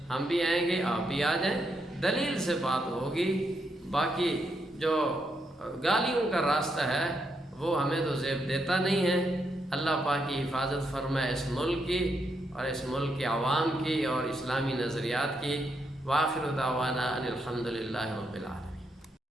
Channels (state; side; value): normal; both; correlation 0.80